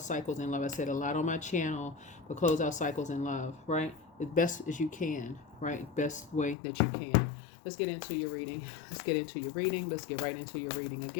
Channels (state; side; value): drops out; right; at 6.6 s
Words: cycles in love. I said a lot on my channel, but close out cycles in love, right? As best as you can, right? Best way that you can. Let's get into your reading. Let's get into your reading. Let's get right into your reading